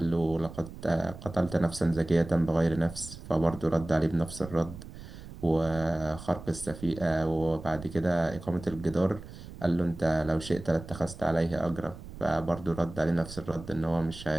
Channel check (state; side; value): noise; right; rumble, 14 dB below the sound